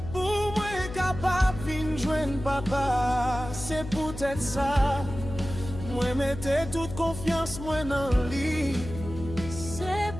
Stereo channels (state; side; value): noise; left; hum, 10 dB below the sound